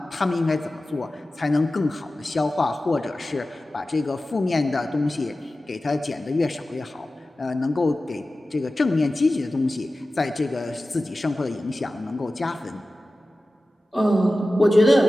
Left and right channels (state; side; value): normal; both; correlation 0.95